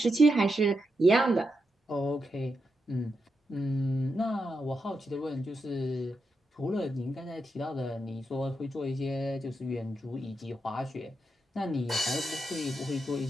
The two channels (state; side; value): normal; both; correlation 0.85